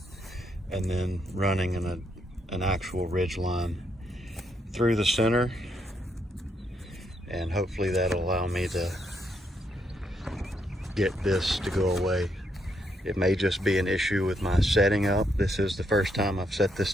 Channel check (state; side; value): normal; both; correlation 0.76